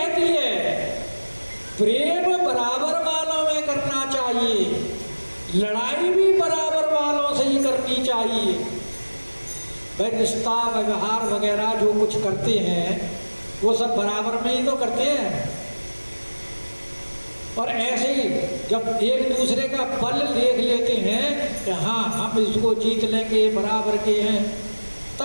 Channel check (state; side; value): inverted; both; correlation -1.00